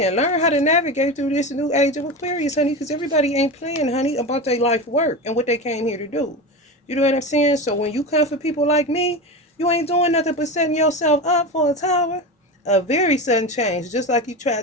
Learn how to navigate through this new age of Aquarius, honey, because everybody ain't playing, honey, about their life work and what they came here to do. You know what I'm saying? So when you come for people like me, you ain't doing nothing but setting yourself up for a tower. A very sudden change, just like you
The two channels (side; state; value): both; normal; correlation 0.23